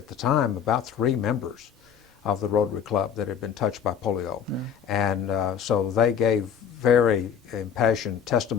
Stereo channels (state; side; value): quieter; right; 8.0 dB